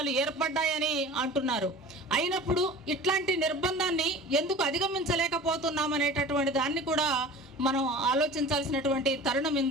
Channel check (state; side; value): normal; both; correlation 0.39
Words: ఏర్పడ్డాయని అంటున్నారు. అయినప్పుడు ఇట్లాంటి నిర్బంధాన్ని ఎందుకు అధిగమించలేకపోతున్నాం అనేటటువంటి దాన్ని కూడా మనం ఆలోచించాల్సినటువంటి తరుణం